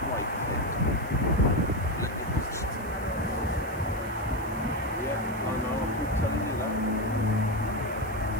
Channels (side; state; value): left; noise; hiss, 21 dB below the sound